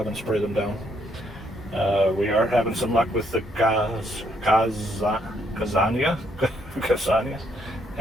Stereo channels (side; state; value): both; normal; correlation 0.72